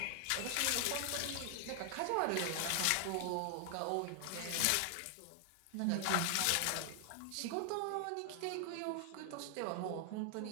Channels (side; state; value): both; different; correlation 0.00